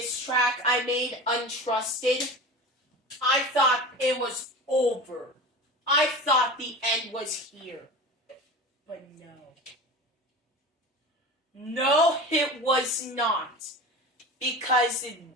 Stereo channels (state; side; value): normal; both; correlation 0.32